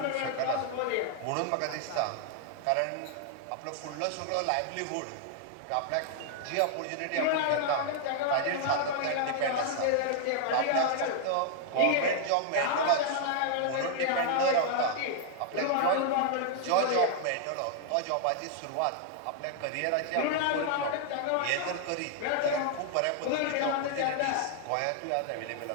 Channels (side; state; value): both; different; correlation 0.00